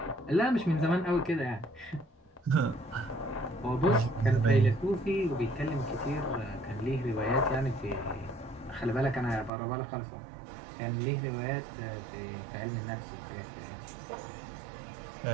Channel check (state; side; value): drops out; left; at 9.5 s